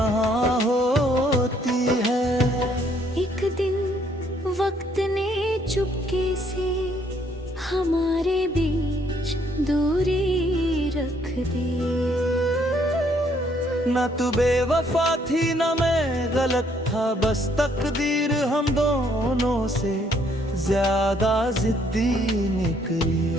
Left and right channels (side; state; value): both; normal; correlation 0.67